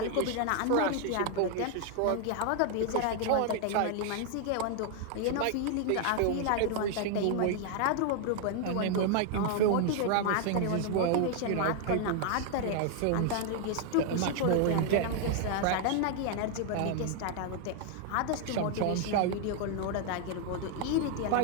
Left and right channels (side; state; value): both; different; correlation 0.00